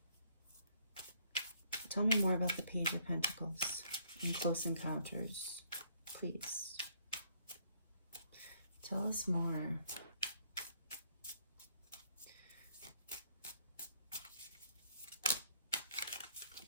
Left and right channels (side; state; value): both; inverted; correlation -0.67